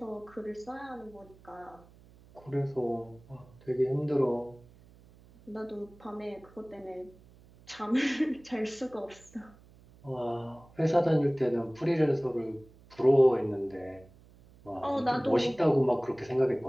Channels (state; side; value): noise; right; hum, 25 dB below the sound